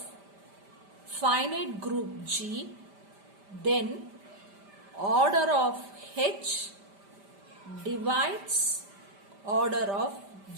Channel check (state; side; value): late; left; 5.1 ms